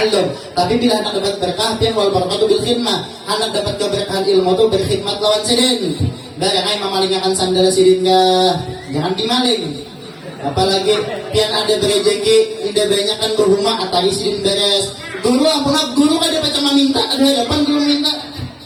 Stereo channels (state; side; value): identical; both; correlation 1.00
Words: tapi bila hendak dapat berkah pian wal barakatuh bil khidmah hendak dapat keberkahan ilmu itu berkhidmat lawan sidin barangnya memalingakan sandal sidin jangan dimaling apalagi pian ada berejeki tidak banyak kan berhumah atari sidin beres guru ampun guru kan dapat cuma minta ada hadapan guru minta